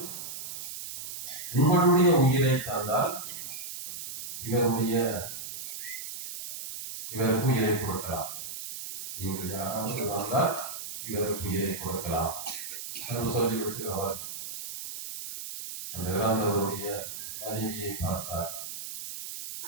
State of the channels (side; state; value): right; noise; hiss, 8 dB below the sound